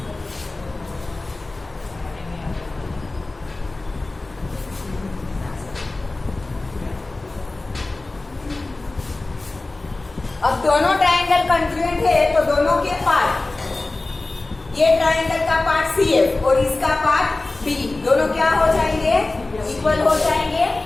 अब दोनों ट्रायंगल कॉन्ग्रुएंट है तो दोनों के पार्ट, ये ट्रायंगल का पार्ट CF और इसका पार्ट बी, दोनों क्या हो जाएंगे? इक्वल हो जाएंगे।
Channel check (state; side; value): quieter; right; 3.1 dB